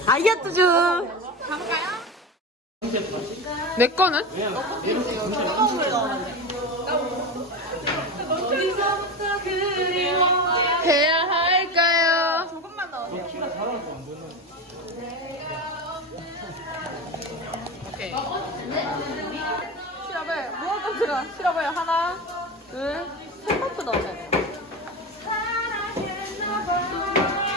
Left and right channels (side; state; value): both; normal; correlation 0.23